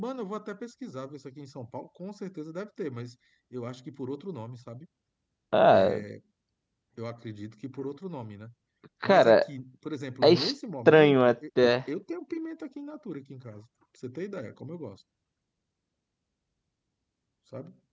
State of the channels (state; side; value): identical; both; correlation 1.00